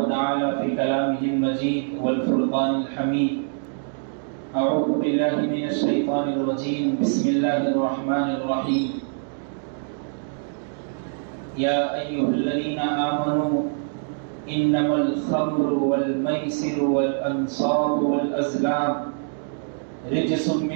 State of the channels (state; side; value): silent; left; 62 dB below the other